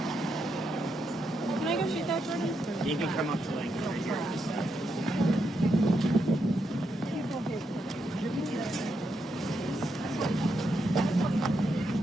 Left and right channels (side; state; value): both; normal; correlation 0.81